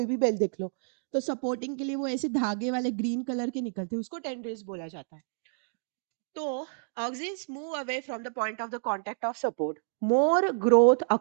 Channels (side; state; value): left; silent; digital silence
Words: भी बेल देख लो, तो सपोर्टिंग के लिए वो ऐसे धागे वाले ग्रीन कलर के निकलते हैं, उसको टेंड्रिल्स बोला जाता है। तो auxins move away from the point of the contact of support. More growth